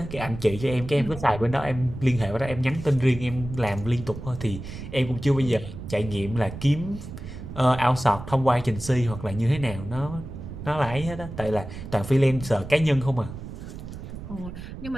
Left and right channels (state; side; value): noise; right; rumble, 11 dB below the sound